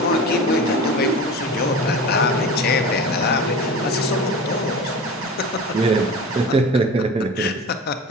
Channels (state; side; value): normal; both; correlation 0.33